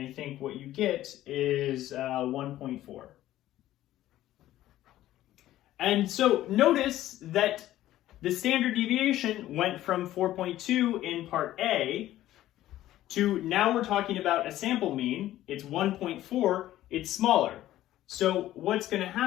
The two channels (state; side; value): quieter; right; 14.1 dB